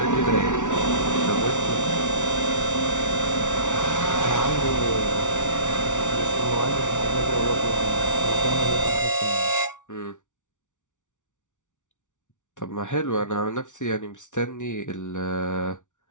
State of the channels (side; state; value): right; late; 0.86 ms